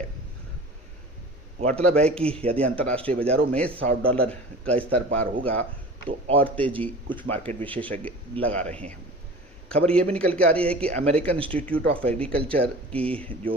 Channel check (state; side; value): normal; both; correlation 0.39